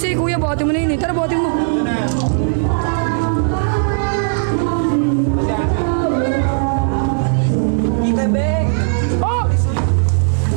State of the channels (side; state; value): left; silent; digital silence